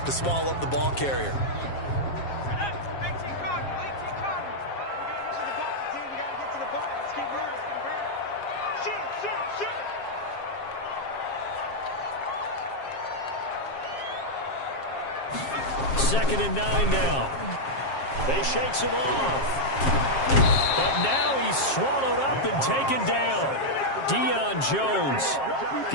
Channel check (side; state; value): right; late; 7.4 ms